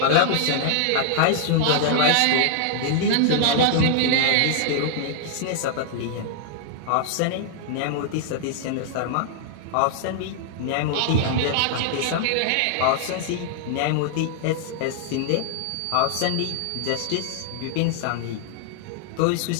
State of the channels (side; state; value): both; different; correlation -0.01